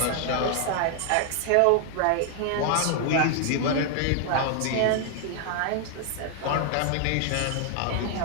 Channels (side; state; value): both; different; correlation 0.00